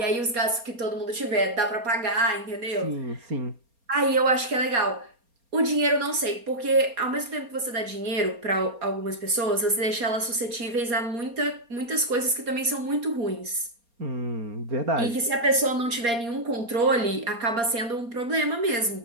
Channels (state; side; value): late; left; 4.3 ms